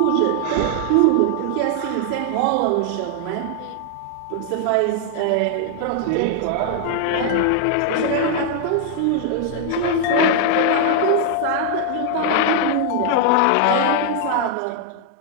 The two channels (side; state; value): both; different; correlation 0.00